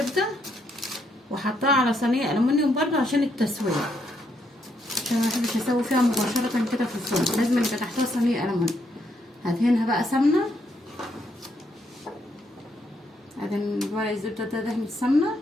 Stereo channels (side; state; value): both; normal; correlation 0.76